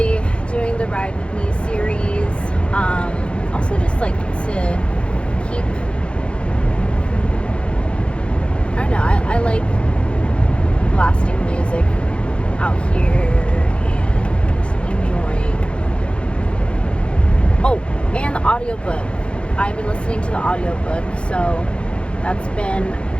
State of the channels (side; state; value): right; late; 0.058 ms